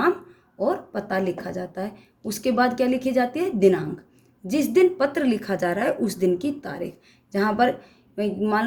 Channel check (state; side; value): identical; both; correlation 1.00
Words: और पता लिखा जाता है। उसके बाद क्या लिखी जाती है? दिनांक। जिस दिन पत्र लिखा जा रहा है उस दिन की तारीख। जहाँ पर मान